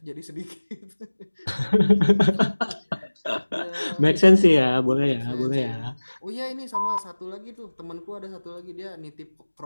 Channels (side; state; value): both; inverted; correlation -1.00